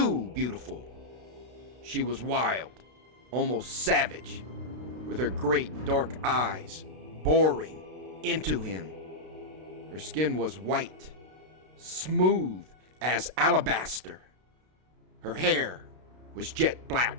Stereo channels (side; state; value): left; late; 32 ms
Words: beautiful. She was wild, almost savage, with her great dark eyes boring into him. Her skin was white, smooth as alabaster. Her hair was jet